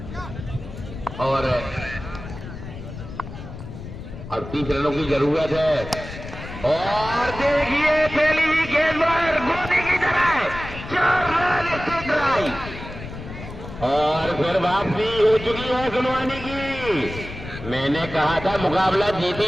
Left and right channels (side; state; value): left; noise; rumble, 11 dB below the sound